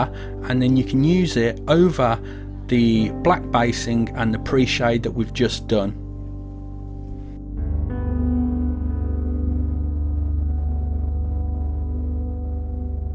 and then you can use it over the black basing and the pre-shade that we've just done.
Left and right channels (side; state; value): both; identical; correlation 1.00